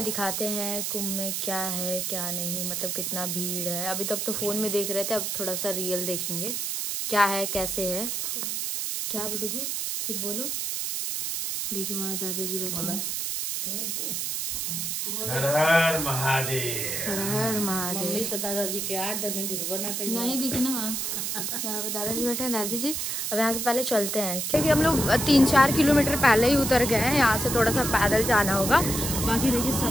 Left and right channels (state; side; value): noise; right; hiss, 2 dB below the sound